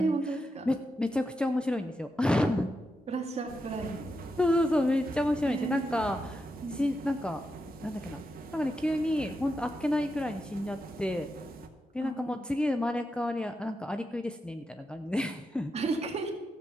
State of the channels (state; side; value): normal; both; correlation 0.86